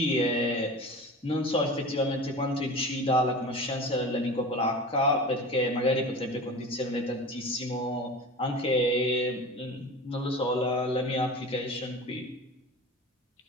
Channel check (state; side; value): normal; both; correlation 0.34